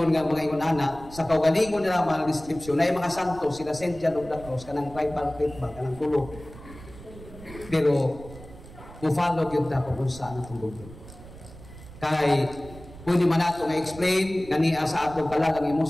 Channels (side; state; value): right; noise; rumble, 17 dB below the sound